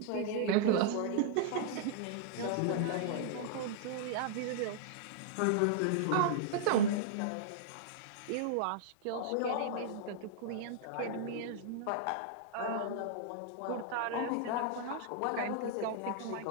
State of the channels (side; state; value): both; different; correlation -0.01